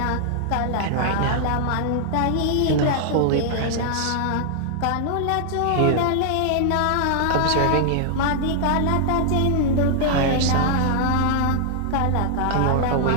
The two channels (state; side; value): different; both; correlation 0.00